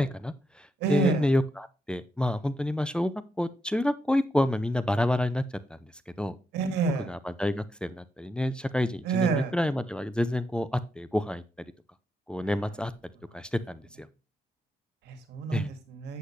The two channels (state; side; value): normal; both; correlation 0.82